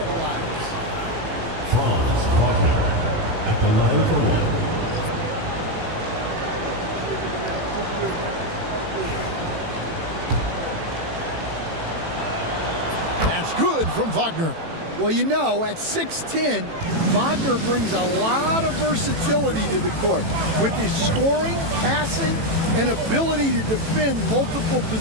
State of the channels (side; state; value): left; late; 18 ms